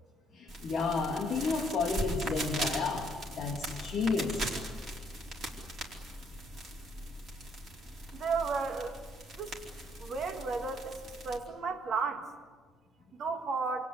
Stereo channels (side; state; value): both; normal; correlation 0.67